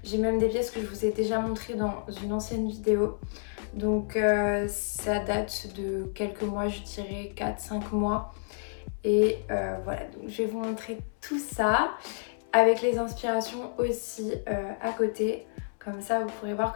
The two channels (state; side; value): silent; right; 58 dB below the other